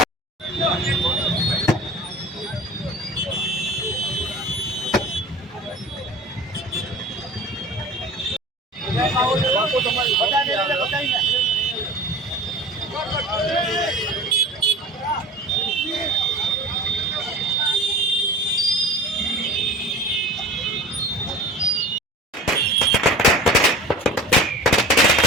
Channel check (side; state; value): both; normal; correlation 0.38